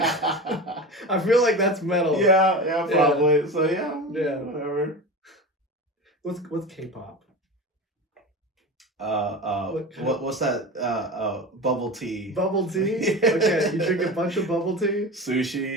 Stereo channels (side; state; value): both; normal; correlation 0.28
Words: feel like that's metal. Yeah, probably. Yeah. So yeah, whatever. What's K-pop? What's that? Bubble tea. Bubble tea. Okay, you drink a bunch of bubble tea.